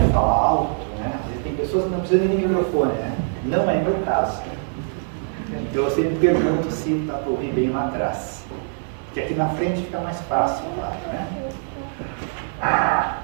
falar alto, né? Às vezes tem pessoas que não precisam nem de microfone, né? Não é meu caso. Então eu sempre pergunto se dá para ouvir bem lá atrás. Porque aqui na frente fica mais fácil, claro, né?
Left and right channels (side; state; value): left; silent; 59 dB below the other